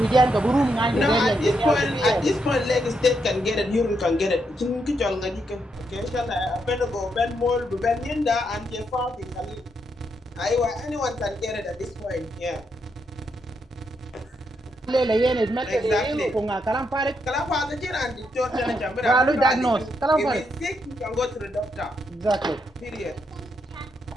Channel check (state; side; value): normal; both; correlation 0.79